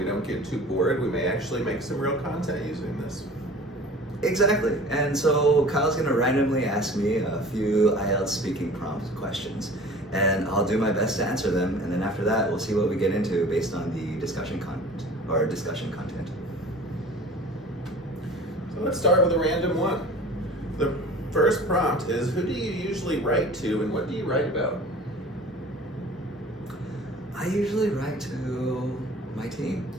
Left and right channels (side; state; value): both; normal; correlation 0.43